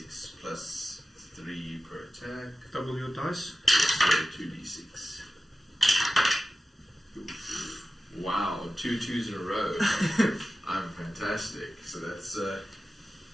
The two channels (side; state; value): both; normal; correlation 0.94